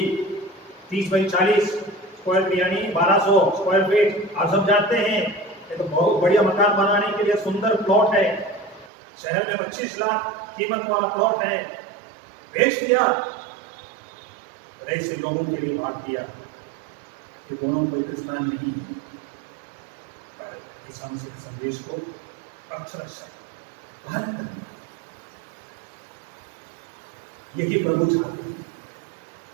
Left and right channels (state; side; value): drops out; left; at 8.9 s